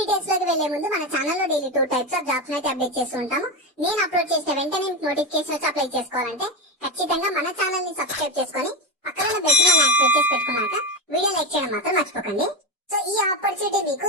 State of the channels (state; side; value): normal; both; correlation 0.13